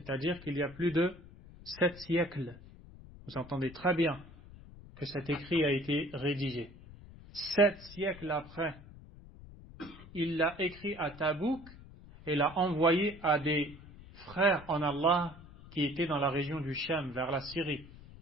qu'il y a plus de 7 siècles. Vous entendez très bien que cet écrit a été rédigé. 7 siècles après, il l'a écrit à Tabouk et l'a envoyé à des frères en Allah qui étaient dans la région du Cham, vers la Syrie.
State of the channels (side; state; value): left; noise; rumble, 18 dB below the sound